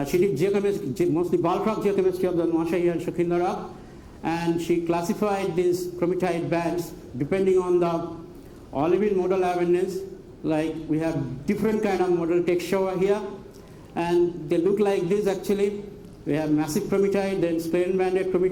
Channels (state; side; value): identical; both; correlation 1.00